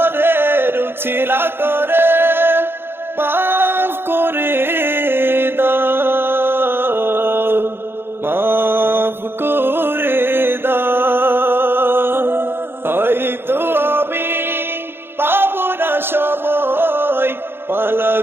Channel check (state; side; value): late; left; 0.11 ms